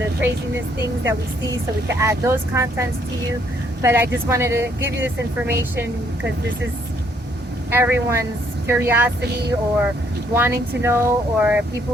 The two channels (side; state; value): both; normal; correlation 0.68